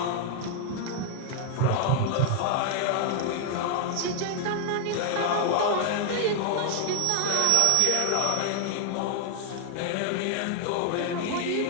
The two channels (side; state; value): both; different; correlation 0.00